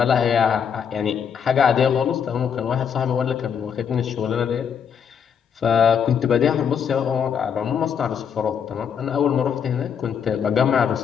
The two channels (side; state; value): right; quieter; 7.4 dB